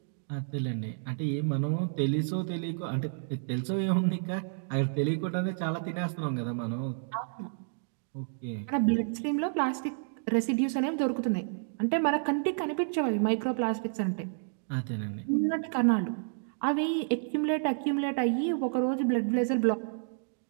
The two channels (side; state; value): left; silent; digital silence